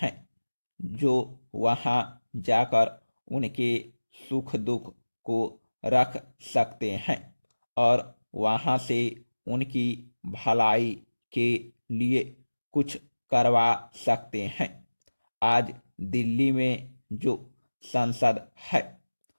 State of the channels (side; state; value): both; inverted; correlation -1.00